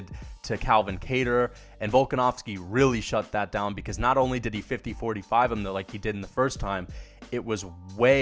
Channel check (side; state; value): both; identical; correlation 1.00